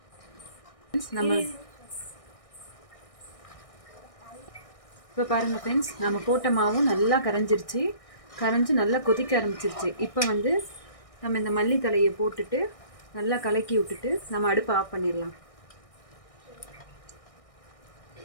நம்ம இப்போ பாருங்கள் ஃப்ரெண்ட்ஸ், நம்ம போட்ட மாவும் நல்லா கரைஞ்சி நல்லா கொதிக்க ஆரம்பிச்சிருச்சு. இப்போ நம்ம இந்த மல்லித்தலையை போட்டுட்டு நல்லா கலக்கி விட்டுட்டு நம்ம அடுப்பை ஆஃப் பண்ணிடலாம்.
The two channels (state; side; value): late; right; 1.6 ms